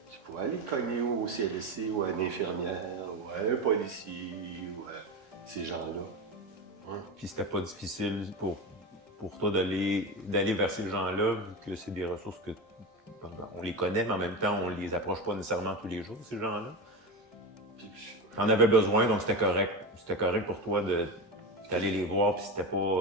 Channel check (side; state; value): both; normal; correlation 0.22